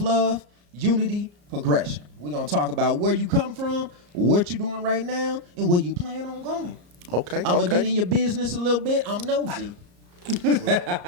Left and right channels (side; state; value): left; late; 34 ms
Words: unity, progression. We're going to talk about where you come from, what you're doing right now, and where you plan on going. Okay. I'm going to get in your business a little bit. I'm nosy.